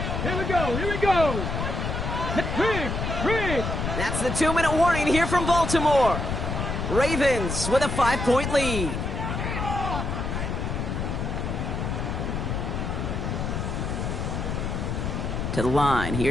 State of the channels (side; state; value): left; noise; rumble, 2 dB below the sound